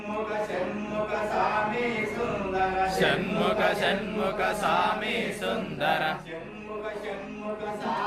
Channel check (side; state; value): both; identical; correlation 1.00